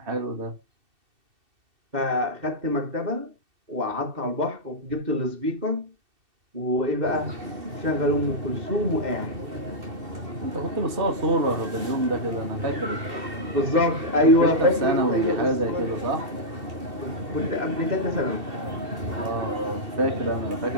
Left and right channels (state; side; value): late; left; 2.7 ms